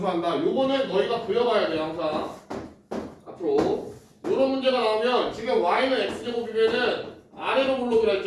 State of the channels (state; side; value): identical; both; correlation 1.00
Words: 요거는 너희가 그려봐야 돼 항상. 앞으로 요런 문제가 나오면 지금 y는 x제곱이면은 아래로 블록이라